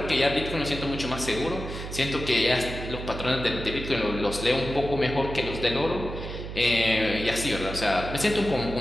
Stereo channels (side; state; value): right; noise; hum, 8 dB below the sound